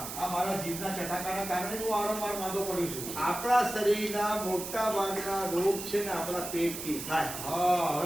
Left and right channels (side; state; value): right; noise; hiss, 8 dB below the sound